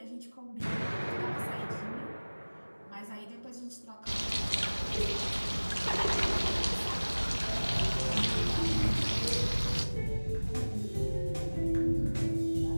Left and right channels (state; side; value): inverted; both; correlation -1.00